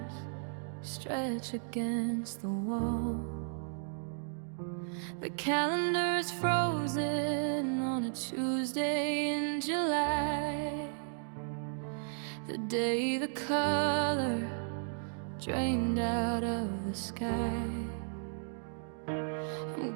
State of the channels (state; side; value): silent; left; digital silence